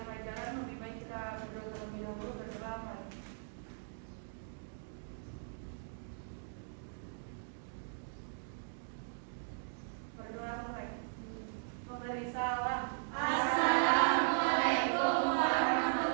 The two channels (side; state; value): left; silent; digital silence